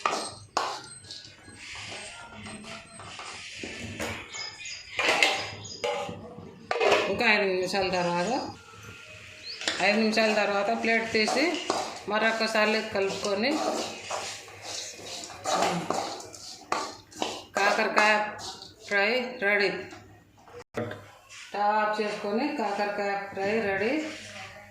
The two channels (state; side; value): identical; both; correlation 1.00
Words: ఇంకా 5 నిమిషాల తర్వాత ప్లేట్ తీసి మరొకసారి కలుపుకొని కాకరకాయ ఫ్రై రెడీ. స్టవ్ ఆఫ్ చేసుకొని కాకరకాయ ఫ్రై రెడీ.